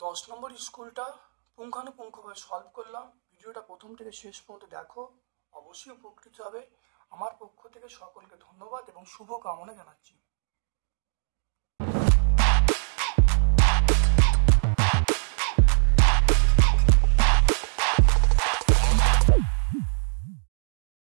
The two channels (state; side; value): silent; left; digital silence